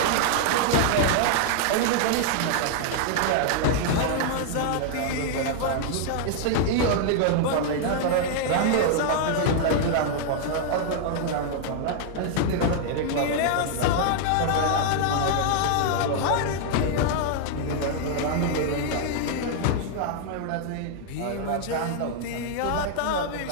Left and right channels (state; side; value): different; both; correlation 0.00